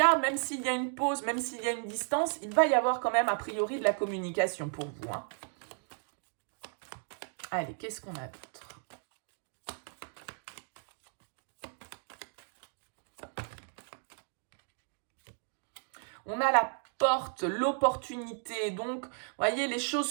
même s'il y a une pause, même s'il y a une distance, il va y avoir quand même a priori de la communication pour vous. Allez, qu'est-ce qu'on a d'autre? On a la porte, l'opportunité. Donc, vous voyez, les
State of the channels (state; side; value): silent; left; 55 dB below the other